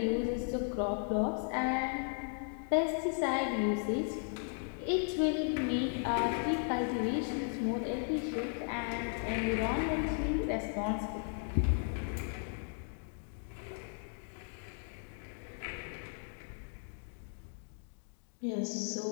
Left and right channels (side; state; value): right; silent; 54 dB below the other